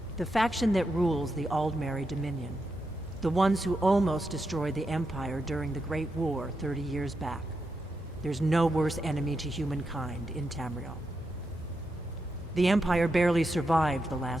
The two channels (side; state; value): both; normal; correlation 0.86